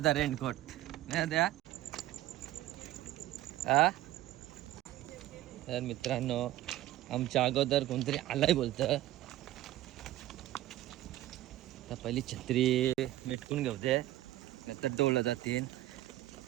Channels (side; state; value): left; quieter; 14.9 dB